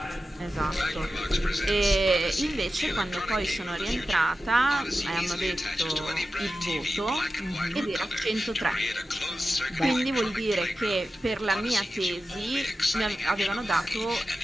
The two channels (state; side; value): normal; both; correlation 0.93